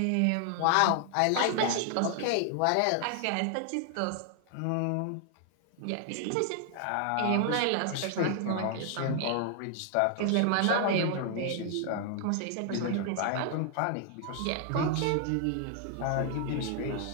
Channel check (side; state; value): both; different; correlation 0.00